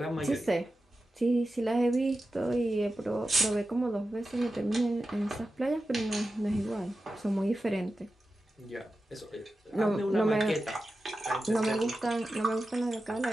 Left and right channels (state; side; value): normal; both; correlation 0.92